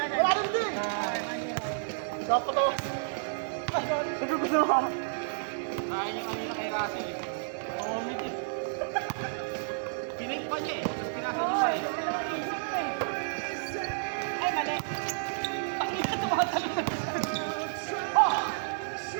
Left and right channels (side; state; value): left; silent; 57 dB below the other